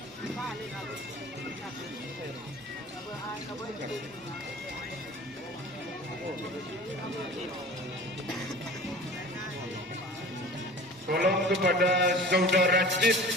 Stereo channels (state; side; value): normal; both; correlation 0.41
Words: Tolong kepada saudara Cid